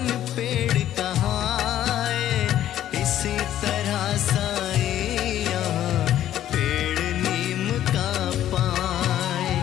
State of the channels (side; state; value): right; quieter; 12.0 dB